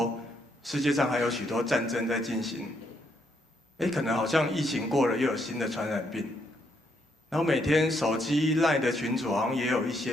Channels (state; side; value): normal; both; correlation 0.75